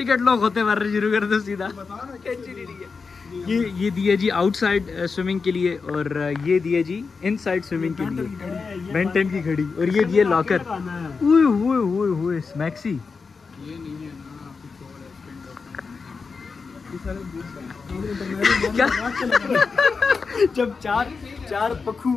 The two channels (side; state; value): right; quieter; 4.9 dB